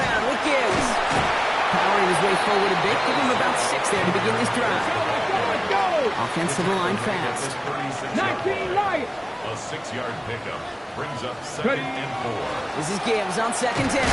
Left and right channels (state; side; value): identical; both; correlation 1.00